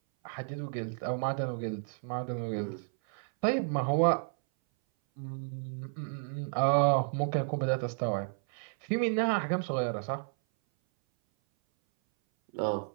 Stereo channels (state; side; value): silent; left; 57 dB below the other